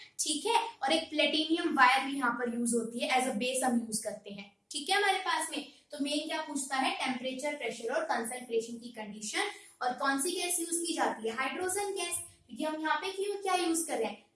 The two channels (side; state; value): both; identical; correlation 1.00